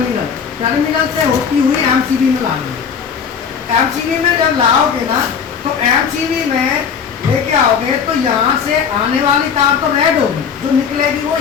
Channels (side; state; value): right; quieter; 6.9 dB